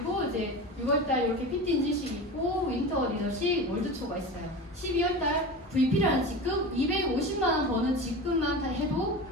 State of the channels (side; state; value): both; normal; correlation 0.29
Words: 이제 6월달 이렇게 PT 인증식 있고 윈터 리더십 월드투어가 있어요. 12월달 VP라는 직급 250만 원 버는 직급만 다 해도